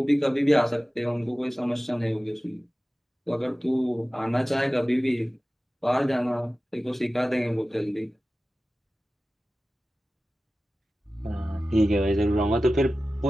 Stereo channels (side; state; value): both; normal; correlation 0.96